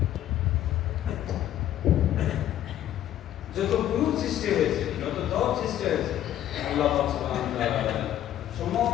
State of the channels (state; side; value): quieter; right; 12.0 dB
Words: যত গ্রুপ সৃষ্টি হয়েছে, যত দল সৃষ্টি হয়েছে, আল্লাহ পাক সুবহানাহু ওয়া তাআলা